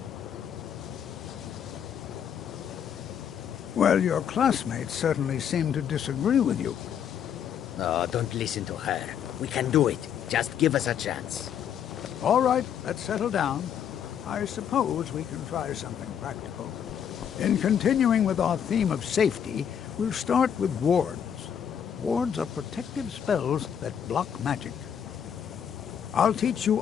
Well, your classmates certainly seem to disagree with you. No, don't listen to her. We can do it. Just give us a chance. All right, let's settle down. I suppose we can try something practical. In continuing with our theme of safety, we'll start with wards. Wards are protective spells that block magic. I'll teach you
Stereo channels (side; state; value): right; quieter; 8.6 dB